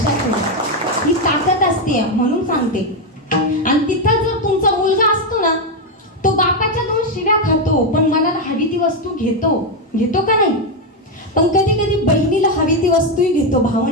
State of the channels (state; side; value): normal; both; correlation 0.05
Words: ठेवा, ही ताकद असते म्हणून सांगते. आणि तिथं जर तुमचा मुलगा असतो ना, तो बापाच्या 2 शिव्या खातो, पण मनाला हवी ती वस्तू घेतो का नाही? पण कधी कधी बहिणीला हवी ती वस्तूही घेतो.